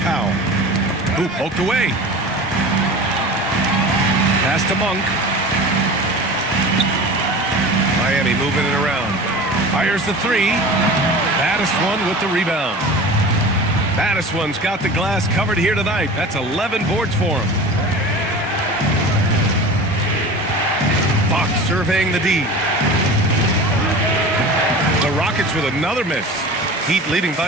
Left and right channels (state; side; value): normal; both; correlation 0.36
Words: Powell. Who poked away. Pass to Monk. Miami moving it around. Fires the 3. Battiswan with the rebound. Battiswan's got the glass covered here tonight. That's 11 boards for him. Fox surveying the D. The Rockets with another miss. Heat leading by